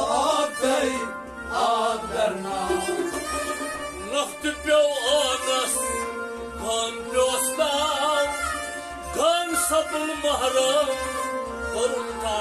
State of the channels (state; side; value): identical; both; correlation 1.00